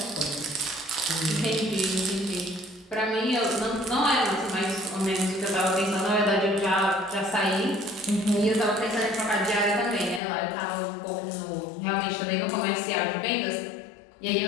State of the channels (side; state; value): right; drops out; at 10.2 s